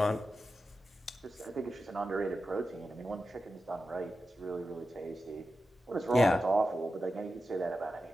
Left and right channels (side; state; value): both; normal; correlation 0.91